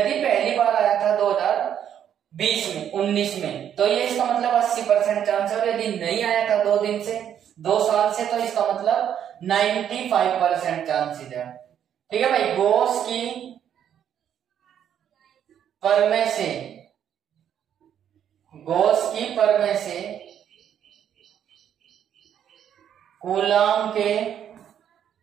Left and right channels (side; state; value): left; quieter; 9.4 dB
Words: पहली बार आया था 2020 में 19 में, तो ये इसका मतलब 80% चांस है। और यदि नहीं आया था 2 साल से, तो इसका मतलब 95% चांसेस है। ठीक है भाई, गॉस की प्रमेय से, गॉस की प्रमेय से कूलाम के